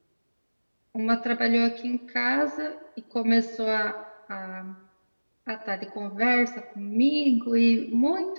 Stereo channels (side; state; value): both; inverted; correlation -1.00